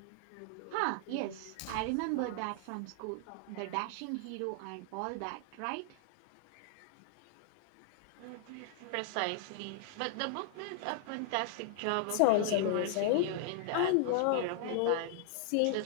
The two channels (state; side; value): different; both; correlation 0.00